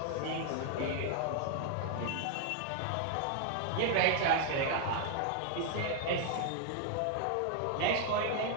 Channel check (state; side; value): different; both; correlation 0.00